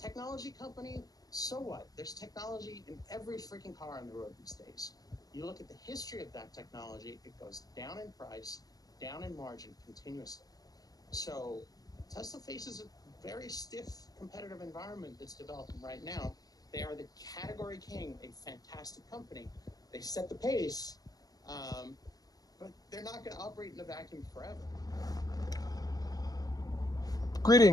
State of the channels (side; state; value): right; late; 0.18 ms